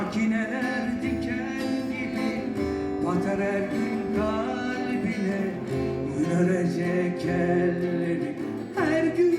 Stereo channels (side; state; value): both; identical; correlation 1.00